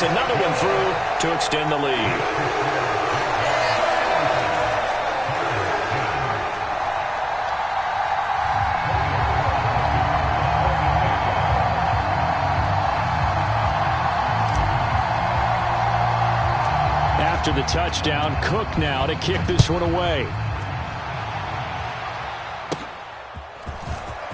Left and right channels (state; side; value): identical; both; correlation 1.00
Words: another one through to extend the lead. After the touchdown, Cook now to kick this one away.